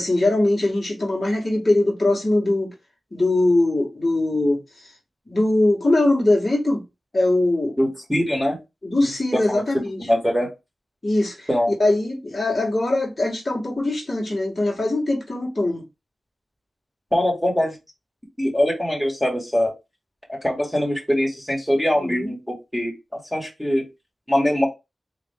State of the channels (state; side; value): normal; both; correlation 0.97